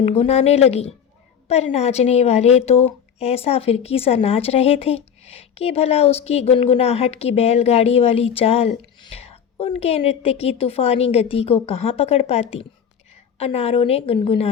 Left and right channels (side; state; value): right; quieter; 7.9 dB